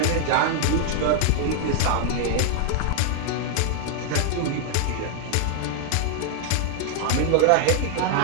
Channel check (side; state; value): both; different; correlation -0.01